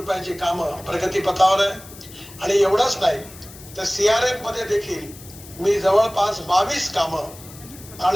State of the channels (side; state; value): left; noise; hiss, 18 dB below the sound